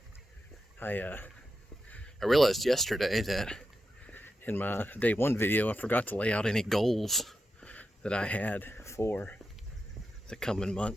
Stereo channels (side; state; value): both; normal; correlation 0.89